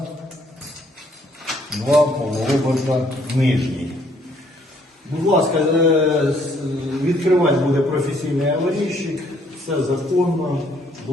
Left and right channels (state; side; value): normal; both; correlation 0.66